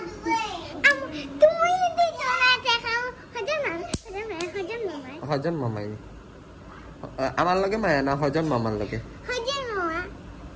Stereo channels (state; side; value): identical; both; correlation 1.00